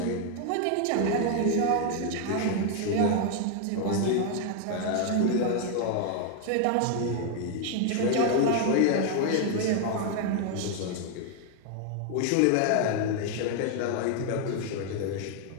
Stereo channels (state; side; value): different; both; correlation 0.00